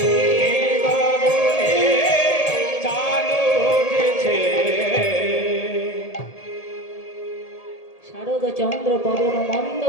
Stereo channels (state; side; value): late; right; 1.8 ms